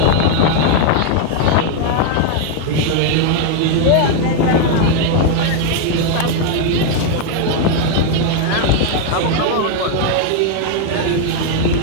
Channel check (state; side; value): different; both; correlation 0.00